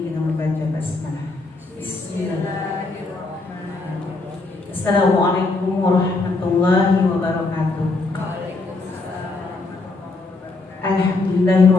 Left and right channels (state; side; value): quieter; right; 3.4 dB